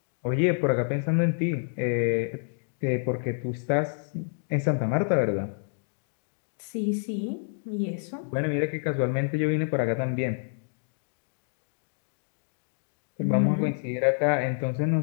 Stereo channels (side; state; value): right; silent; digital silence